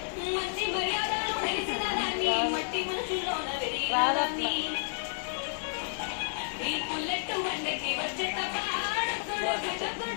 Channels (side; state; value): right; silent; digital silence